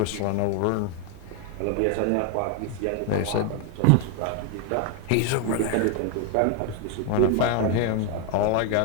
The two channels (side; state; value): both; different; correlation 0.01